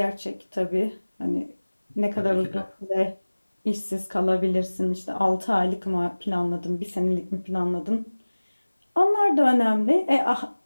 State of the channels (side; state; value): both; inverted; correlation -1.00